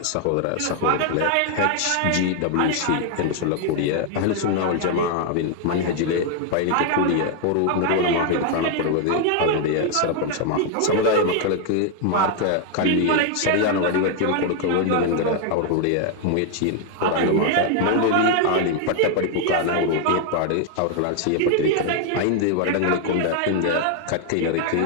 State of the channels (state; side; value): different; both; correlation 0.00